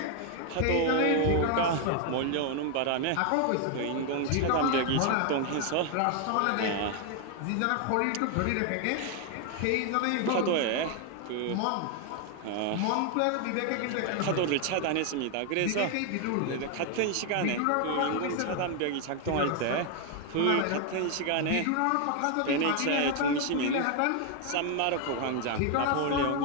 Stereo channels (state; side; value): different; both; correlation 0.01